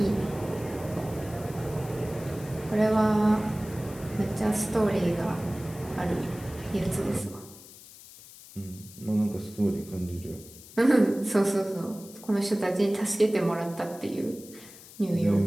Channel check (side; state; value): left; noise; hiss, 19 dB below the sound